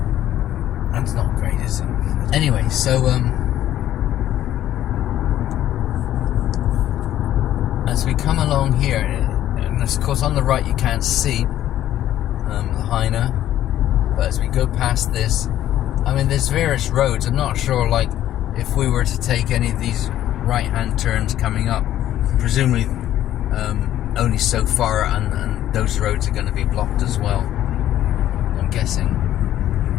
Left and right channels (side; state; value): right; quieter; 12.5 dB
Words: and it's not great, is it? Anyway, so as we come along here, and of course on the right you can't see Lahaina, but as we go past this, I mean, there's various roads. I'm not sure, like, if we were to take any of these right-hand turns coming up, presumably only so far, and those roads are going to be blocked as well, I'm guessing.